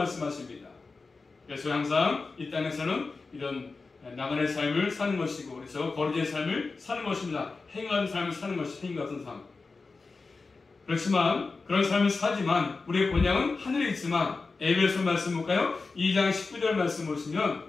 그래서 항상 이 땅에서는 이런 나그네 삶을 사는 것이고 그래서 거리의 삶을 사는 것입니다. 행한 삶을 사는 것이 행위 같은 삶. 그렇지만 그런 삶을 사지만 우리의 본향은 하늘에 있지만 에베소 말씀 볼까요? 2장 19절 말씀 보시면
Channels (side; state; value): right; quieter; 4.0 dB